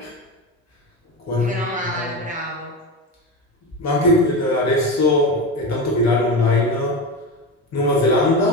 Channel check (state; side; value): normal; both; correlation 0.20